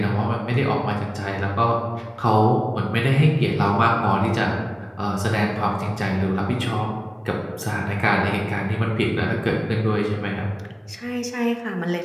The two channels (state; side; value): identical; both; correlation 1.00